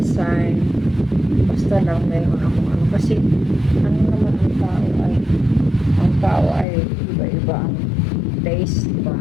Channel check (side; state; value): right; drops out; at 6.7 s